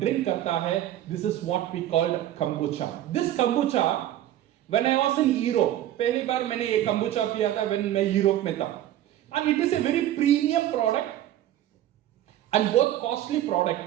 करता है। This is what we called kombucha. This kombucha when I was in Europe, पहली बार मैंने ये कंबूचा पिया था व्हेन मैं यूरोप में था, and it is a very premium product and बहुत कॉस्टली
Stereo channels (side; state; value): left; quieter; 12.6 dB